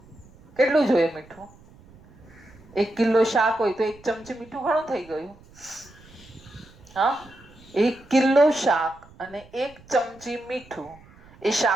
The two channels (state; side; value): noise; right; rumble, 25 dB below the sound